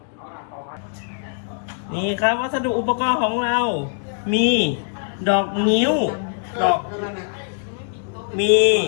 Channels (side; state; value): right; silent; 64 dB below the other